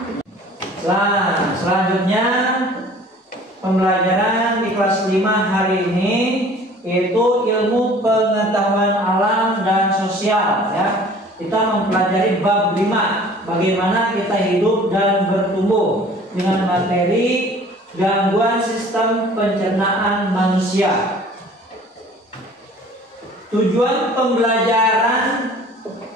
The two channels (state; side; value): normal; both; correlation 0.49